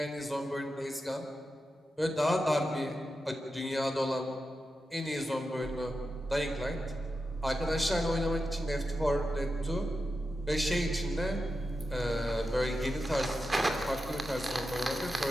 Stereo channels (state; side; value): normal; both; correlation 0.90